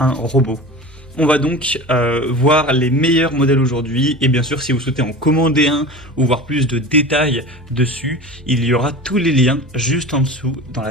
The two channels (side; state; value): both; normal; correlation 0.33